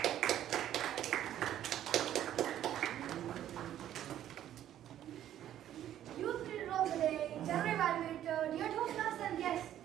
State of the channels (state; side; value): quieter; left; 11.6 dB